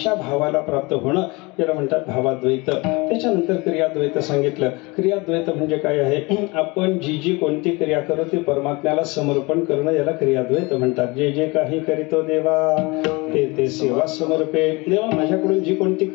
भावाला प्राप्त होणं याला म्हणतात भावाद्वैत. त्याच्यानंतर क्रियाद्वैत सांगितलं. क्रियाद्वैत म्हणजे काय आहे, आपण जी जी कोणती क्रिया करू ती परमात्म्याला समर्पण करणं याला क्रियाद्वैत म्हणतात. जे जे काही करीतो देवा ते ते सेवा समर्पे. देवा माझ्याकडून जी कोणती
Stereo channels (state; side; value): quieter; right; 25.6 dB